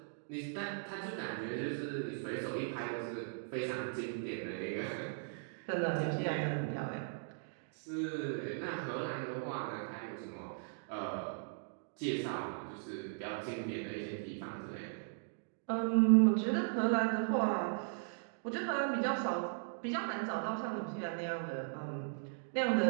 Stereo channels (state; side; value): silent; left; digital silence